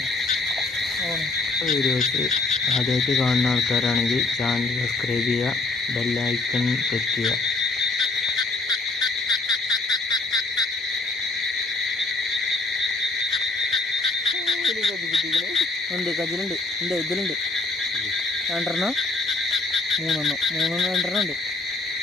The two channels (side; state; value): right; quieter; 3.4 dB